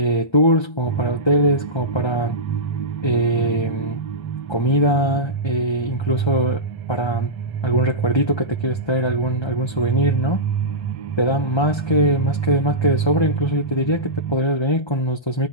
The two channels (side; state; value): right; late; 1.3 ms